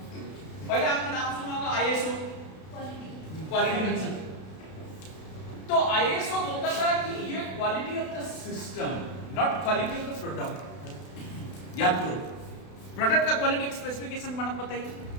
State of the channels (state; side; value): late; right; 32 ms